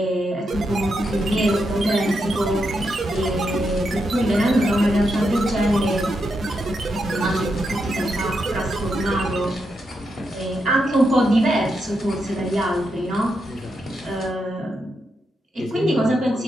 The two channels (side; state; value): both; normal; correlation 0.83